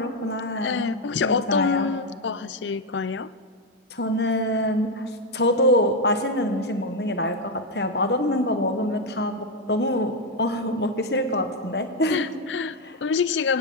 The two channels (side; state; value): both; normal; correlation 0.05